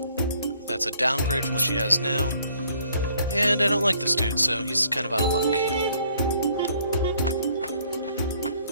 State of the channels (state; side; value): inverted; both; correlation -0.63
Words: That's a downgrade from what she has now. And I don't like this dude, so he's kind of out of luck.